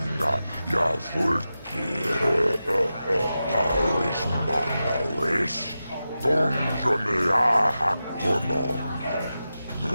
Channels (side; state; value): both; inverted; correlation -0.92